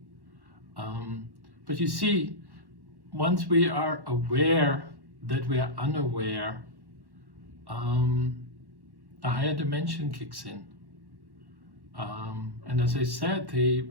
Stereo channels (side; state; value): left; late; 1.1 ms